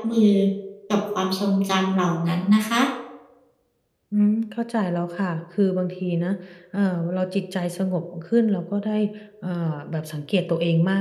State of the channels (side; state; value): both; identical; correlation 1.00